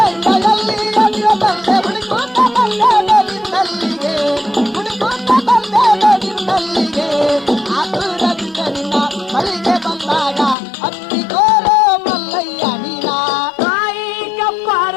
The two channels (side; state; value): right; drops out; at 10.6 s